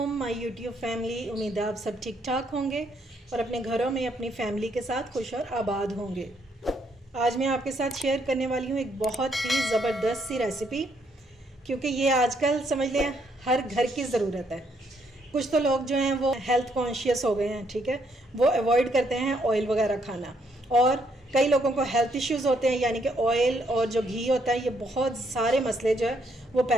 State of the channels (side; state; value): both; normal; correlation 0.72